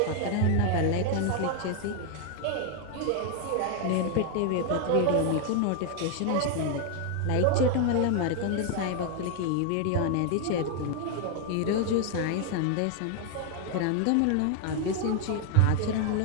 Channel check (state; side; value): different; both; correlation 0.00